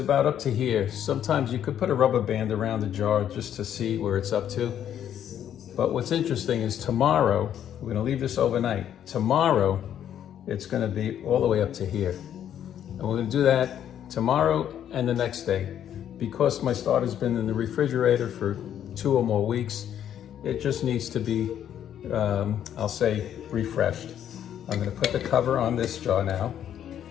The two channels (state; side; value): quieter; right; 10.0 dB